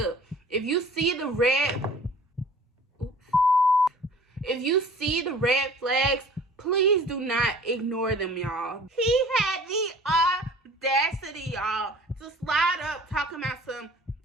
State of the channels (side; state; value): both; normal; correlation 0.47